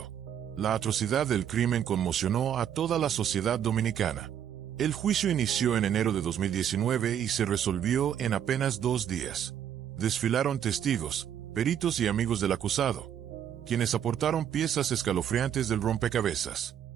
La atrocidad del crimen conmocionó a toda la sociedad dominicana. El juicio inició en enero de 2019 y se resolvió en apenas 2 días. Desfilaron testigos, peritos y amigos del acusado, quienes aportaron piezas escalofriantes del rompecabezas.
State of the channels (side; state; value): left; quieter; 9.5 dB